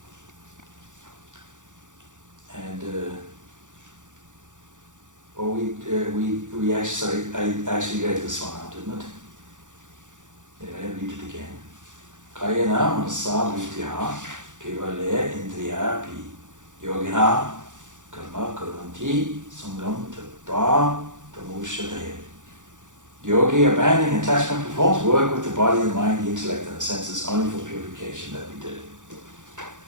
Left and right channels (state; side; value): late; left; 0.86 ms